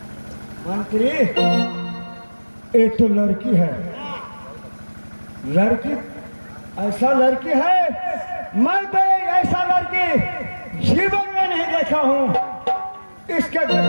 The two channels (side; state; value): both; inverted; correlation -1.00